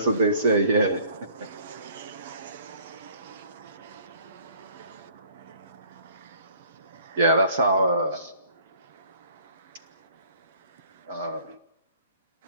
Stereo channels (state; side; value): inverted; both; correlation -0.56